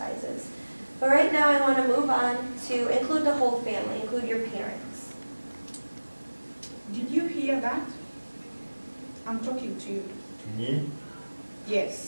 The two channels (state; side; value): inverted; both; correlation -1.00